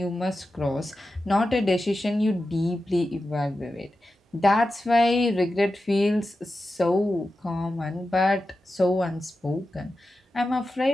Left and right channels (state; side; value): normal; both; correlation 0.92